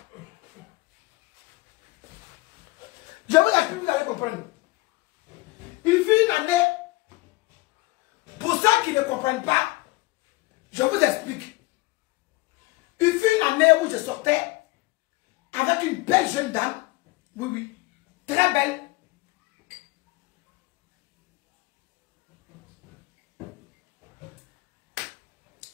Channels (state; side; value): quieter; right; 21.9 dB